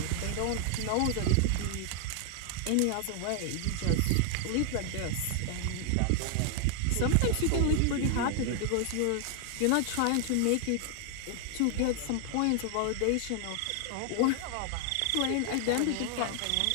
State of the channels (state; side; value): different; both; correlation 0.00